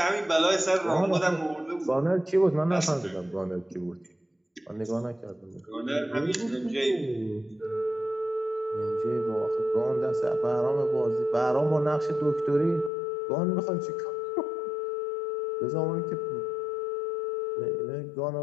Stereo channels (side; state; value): right; drops out; at 12.9 s